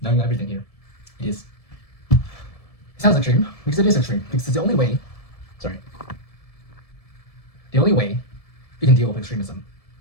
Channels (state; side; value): late; right; 1.7 ms